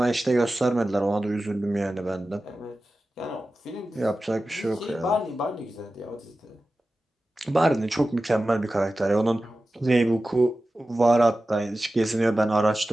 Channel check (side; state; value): both; normal; correlation 0.95